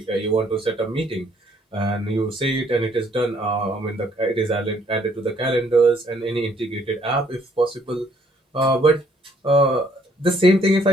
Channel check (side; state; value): both; normal; correlation 0.65